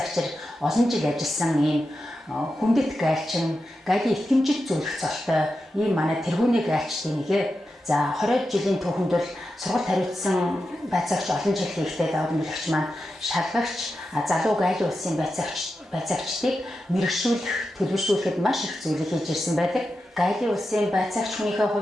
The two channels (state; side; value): normal; both; correlation 0.90